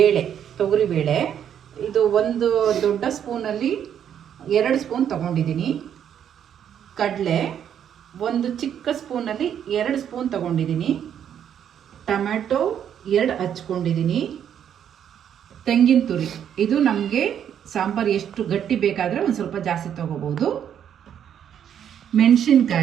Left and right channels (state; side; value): quieter; left; 9.2 dB